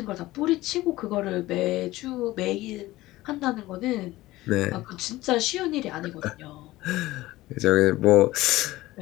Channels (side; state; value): right; quieter; 17.7 dB